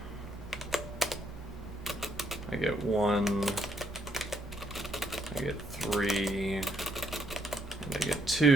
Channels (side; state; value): both; normal; correlation 0.73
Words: I get 1, I get 3, and I get